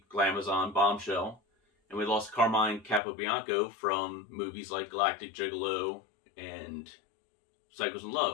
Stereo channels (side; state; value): right; drops out; at 3.0 s